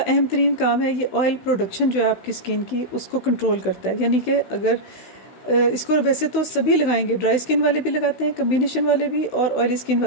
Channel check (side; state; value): right; late; 16 ms